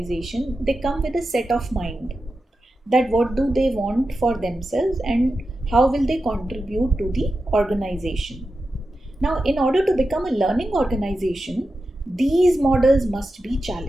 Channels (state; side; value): normal; both; correlation 0.91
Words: they come with a set of mind, that what do they want for themselves and how will they contribute to the organization. Now, in order to become a learning organization, these models must be